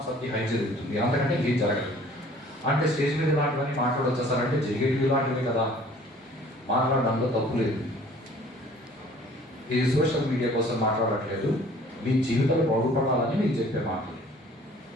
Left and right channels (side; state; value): both; normal; correlation 0.52